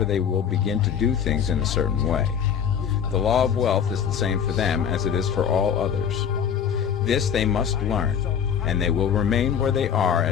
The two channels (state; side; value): quieter; right; 8.0 dB